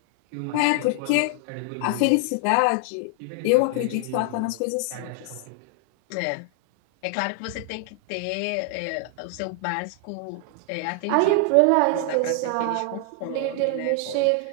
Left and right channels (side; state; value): both; different; correlation 0.00